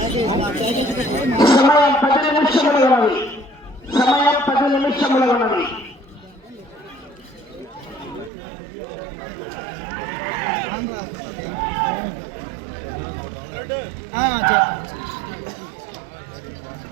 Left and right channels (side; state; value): left; drops out; at 8.3 s